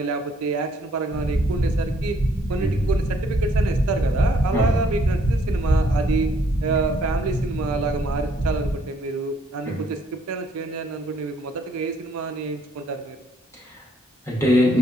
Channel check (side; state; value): both; normal; correlation 0.66